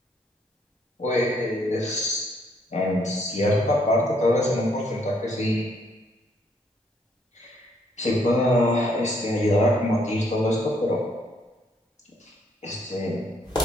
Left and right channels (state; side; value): normal; both; correlation 0.69